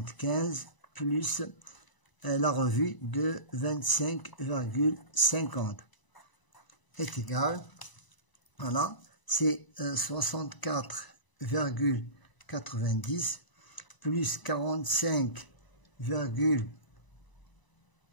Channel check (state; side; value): late; right; 1.0 ms